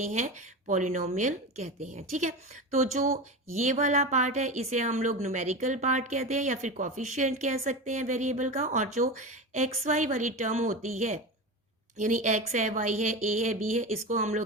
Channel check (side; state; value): both; normal; correlation 0.25